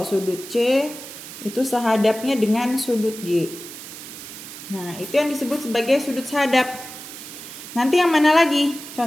sudut C itu sehadapnya dengan sudut G. Nah, itu yang disebut sebagai sudut sehadap. Nanti yang mana lagi?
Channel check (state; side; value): noise; right; hiss, 13 dB below the sound